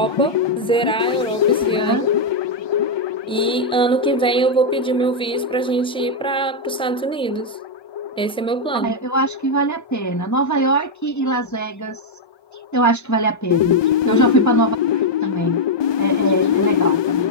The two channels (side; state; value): both; normal; correlation 0.00